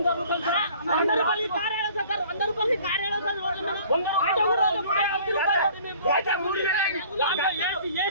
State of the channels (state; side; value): inverted; both; correlation -0.51